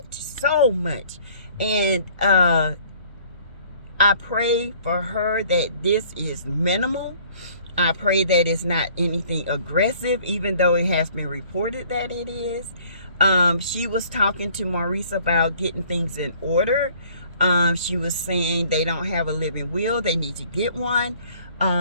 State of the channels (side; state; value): both; inverted; correlation -0.55